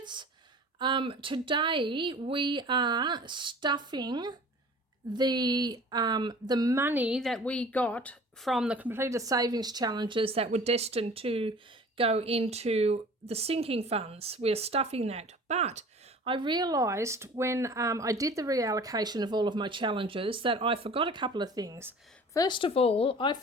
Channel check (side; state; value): both; normal; correlation 0.44